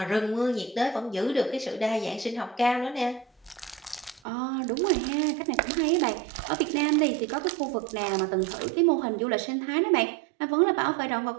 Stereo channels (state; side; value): drops out; left; at 4.2 s